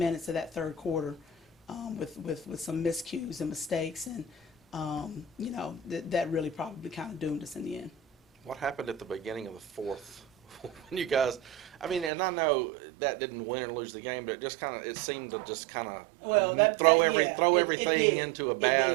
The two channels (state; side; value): drops out; left; at 12.1 s